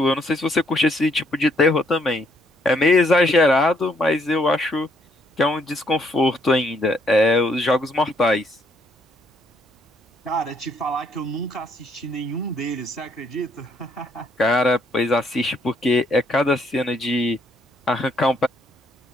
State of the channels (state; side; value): normal; both; correlation 0.69